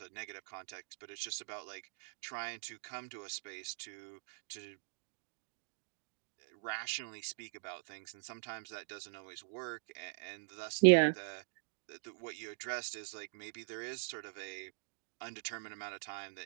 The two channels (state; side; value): silent; left; digital silence